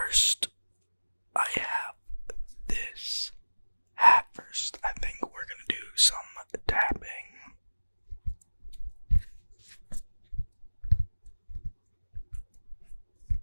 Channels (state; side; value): inverted; both; correlation -1.00